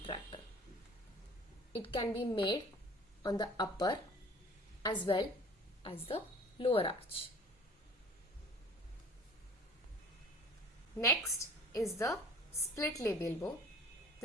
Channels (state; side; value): normal; both; correlation 0.47